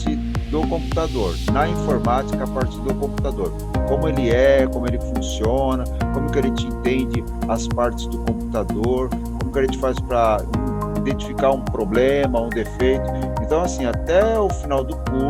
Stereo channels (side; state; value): both; identical; correlation 1.00